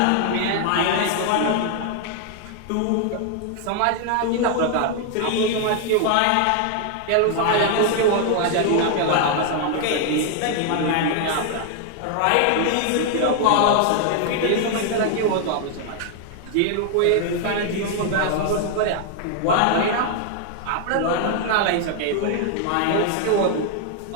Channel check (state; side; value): different; both; correlation 0.00